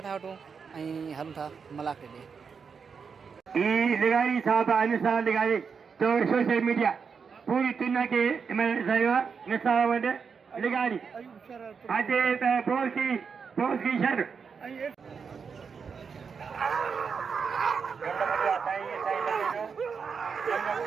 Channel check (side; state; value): left; quieter; 5.9 dB